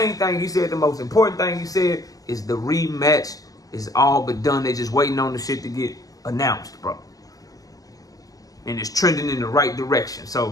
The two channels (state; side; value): late; right; 0.18 ms